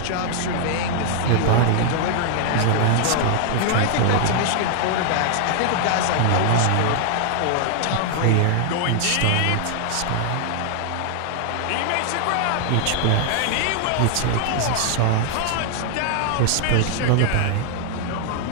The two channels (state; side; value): different; both; correlation 0.00